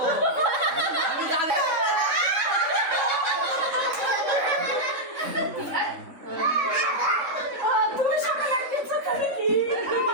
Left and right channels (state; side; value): late; left; 3.6 ms